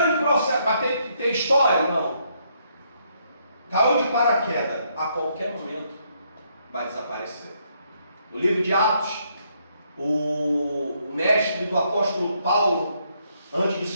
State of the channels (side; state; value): both; inverted; correlation -0.73